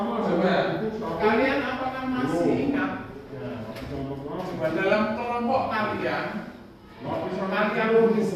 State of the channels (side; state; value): both; identical; correlation 1.00